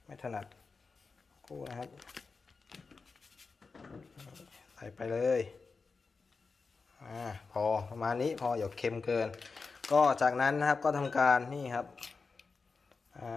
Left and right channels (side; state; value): right; quieter; 4.5 dB